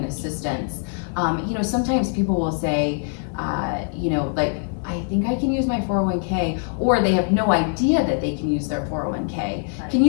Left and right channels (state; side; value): silent; right; 57 dB below the other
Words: assistance, you know, sometimes people will say, you know, like, I think I can use my 401k, or they have no idea that they can use their 401k. Right. Can